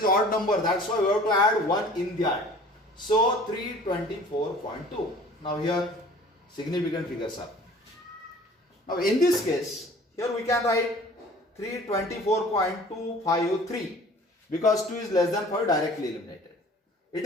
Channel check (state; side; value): normal; both; correlation 0.48